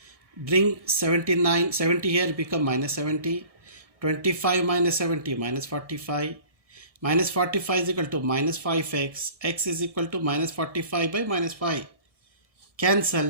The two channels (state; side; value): late; left; 1.6 ms